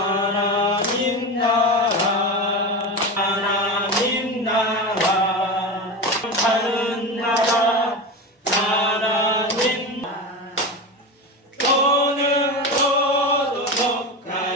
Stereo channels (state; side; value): normal; both; correlation 0.23